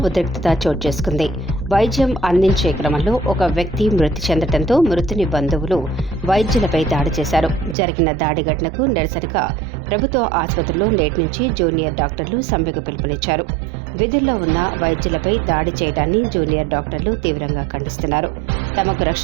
ఉద్రిక్తత చోటు చేసుకుంది. వైద్యం అందించే క్రమంలో ఒక వ్యక్తి మృతి చెందడంతో మృతుని బంధువులు వైద్యులపై దాడి చేశారు. జరిగిన దాడి ఘటనకు నిరసనగా ప్రభుత్వ ఆసుపత్రిలో నేటి నుంచి జూనియర్ డాక్టర్లు సమ్మెకు పిలుపునిచ్చారు. విధుల్లో ఉన్న వైద్యులపై దాడి చేయడాన్ని జూనియర్ డాక్టర్లు తీవ్రంగా ఖండిస్తున్నారు. తమకు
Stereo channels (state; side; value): drops out; left; at 7.8 s